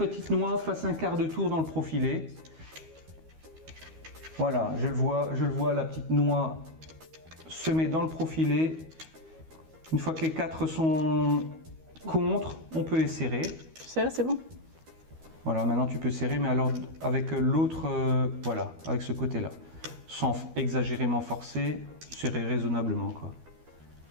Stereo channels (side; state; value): left; late; 12 ms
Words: noix fasse un quart de tour dans le profilé. Voilà, je le vois, la petite noix se met dans le profilé. Une fois que les 4 sont contre, on peut les serrer. C'est bon. Voilà, maintenant tu peux serrer, mais alors avec l'autre, voilà, avec ce côté-là. Sans exagérément forcer, serrer raisonnablement, quoi.